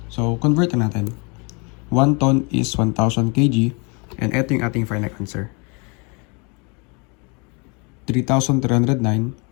So, convert na natin. 1 ton is 1,000 kg. And ito yung ating final answer.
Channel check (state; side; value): quieter; right; 31.6 dB